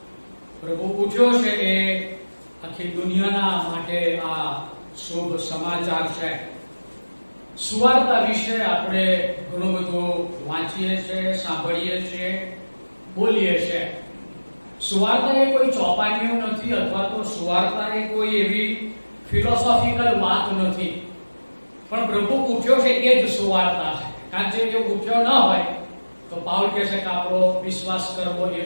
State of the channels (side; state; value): both; inverted; correlation -1.00